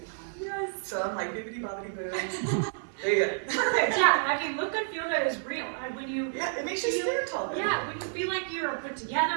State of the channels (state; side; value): silent; left; digital silence